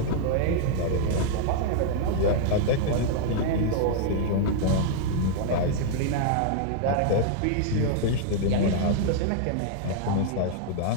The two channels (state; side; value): different; both; correlation -0.01